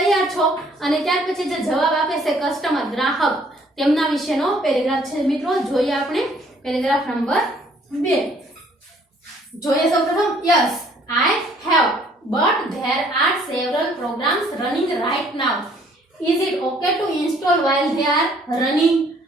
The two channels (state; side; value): normal; both; correlation 0.61